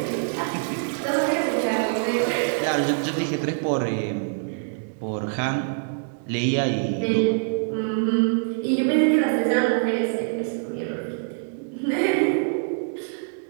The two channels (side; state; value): left; silent; digital silence